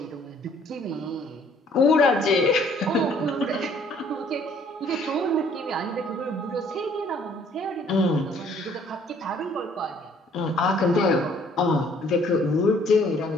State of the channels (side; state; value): both; normal; correlation 0.60